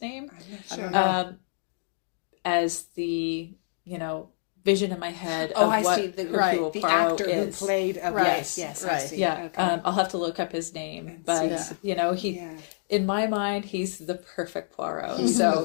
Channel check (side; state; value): right; silent; digital silence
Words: name? I'm not sure. As the, vision in my head of I what see. The Hercule Poirot actor is. who played. Right. Yes. Right. I see. Yeah. Okay. I'll have to look up his name, but in my mind, he's the perfect Poirot.